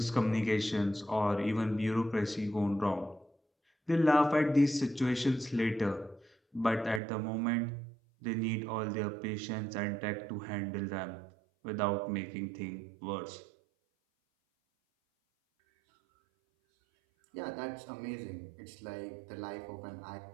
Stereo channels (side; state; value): left; drops out; at 7.0 s